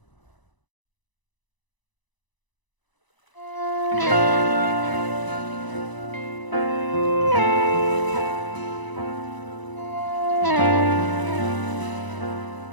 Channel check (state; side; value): late; right; 1.0 ms